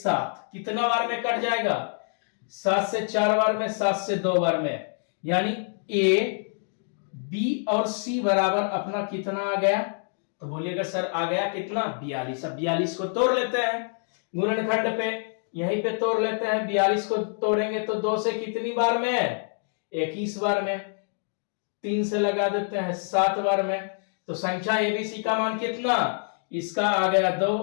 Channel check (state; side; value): silent; right; 61 dB below the other